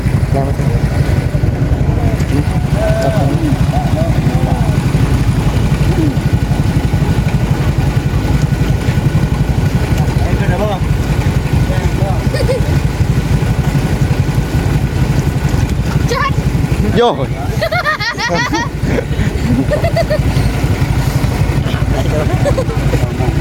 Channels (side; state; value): both; identical; correlation 1.00